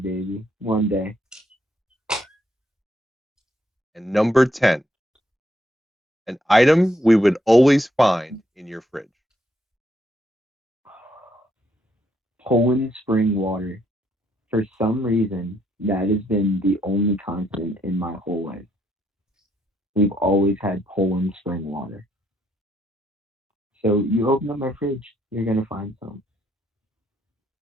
One day. And number 10. An item we would always find in your fridge. Poland spring water. For some reason, that has been the only constant in my whole life. We've always had Poland spring water. So you open up my fridge, you're going to find some.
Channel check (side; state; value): both; normal; correlation 0.74